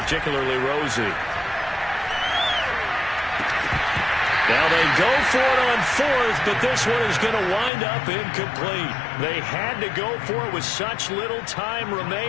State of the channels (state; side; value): drops out; right; at 7.7 s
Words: rosy. Now they go for it on 4th, but this one is going to wind up incomplete. They had to go for it with such little time